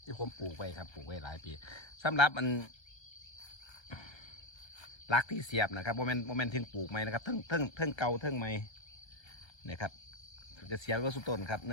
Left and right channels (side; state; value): right; late; 1.3 ms